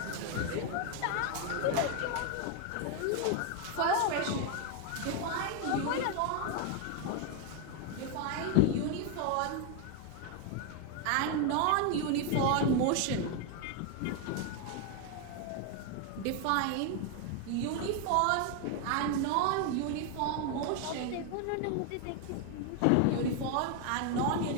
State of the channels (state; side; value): different; both; correlation 0.01